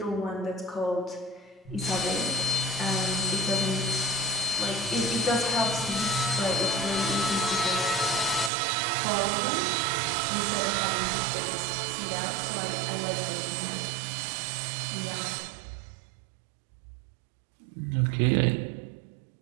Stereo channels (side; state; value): left; drops out; at 8.5 s